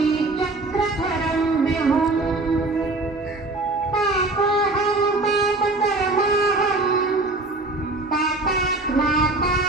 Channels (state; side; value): quieter; left; 3.0 dB